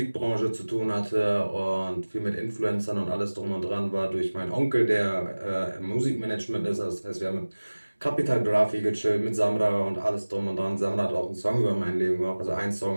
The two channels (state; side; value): inverted; both; correlation -1.00